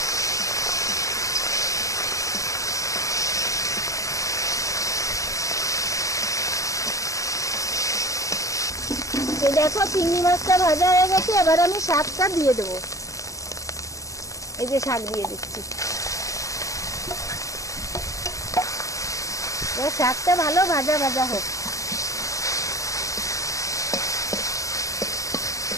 এই দেখো চিংড়ি মাছটা ভাজা হয়ে গেছে, এবার আমি শাকটা দিয়ে দেবো। এই যে শাক দিয়ে দিচ্ছি। এবার শাকটা ভালো ভাজা ভাজা হোক।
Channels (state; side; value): late; right; 0.16 ms